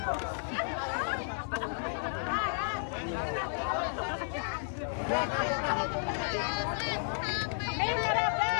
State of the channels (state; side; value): silent; right; digital silence